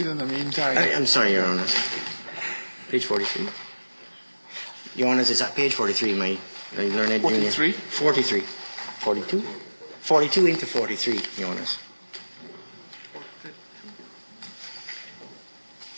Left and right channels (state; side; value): inverted; both; correlation -1.00